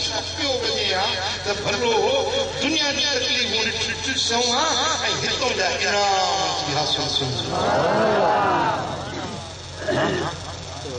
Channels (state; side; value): identical; both; correlation 1.00